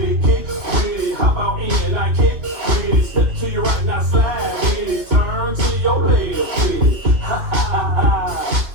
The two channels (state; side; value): late; left; 2.2 ms